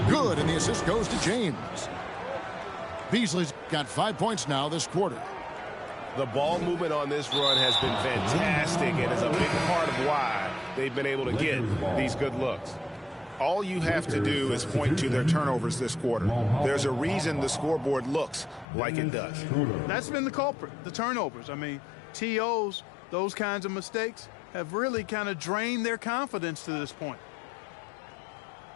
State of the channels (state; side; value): drops out; right; at 18.7 s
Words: Good, and the assist goes to James. Beasley's got 5 points now this quarter. The ball movement on this run has been fantastic and is a big part of why they've been able to get these good looks. All you have to do is point to their turnovers this quarter. There's a reason the scoreboard looks like it does. That's been the culprit, the turnovers. I mean, TOs, those kinds of mistakes have really kind of drained their confidence to this point.